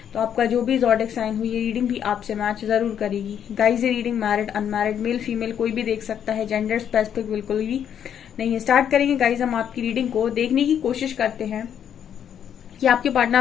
तो आपका जो भी ज़ोडिएक साइन हो ये रीडिंग भी आपसे मैच जरूर करेगी। गाइज, ये reading married unmarried male female कोई भी देख सकता है, जेंडर स्पेसिफिक बिल्कुल भी नहीं है। स्टार्ट करेंगे गाइज, हम आपकी रीडिंग को देखने की कोशिश करते हैं कि आपके पार्टनर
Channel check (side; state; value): right; quieter; 9.0 dB